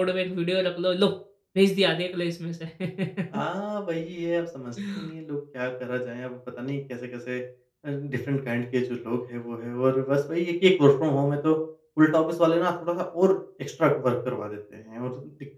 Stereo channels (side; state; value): both; identical; correlation 1.00